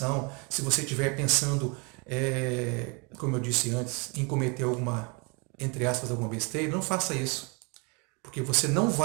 se você estiver pensando, como eu disse antes, em cometer alguma, entre aspas, alguma besteira, não faça isso. Porque você não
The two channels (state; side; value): quieter; left; 31.7 dB